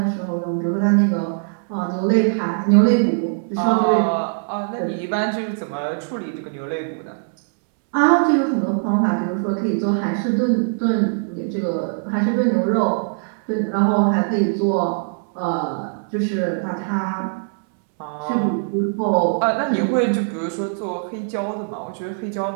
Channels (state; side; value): silent; left; 65 dB below the other